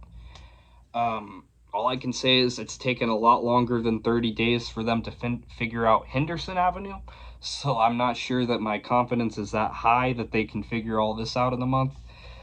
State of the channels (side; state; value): both; identical; correlation 1.00